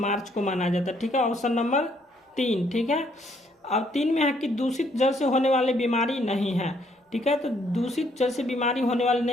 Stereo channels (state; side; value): normal; both; correlation 0.69